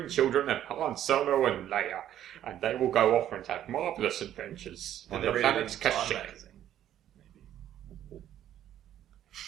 children of Han Solo and Leia, and they will go off and have marvellous adventures on the planet Kashyyyk.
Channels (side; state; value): left; quieter; 11.4 dB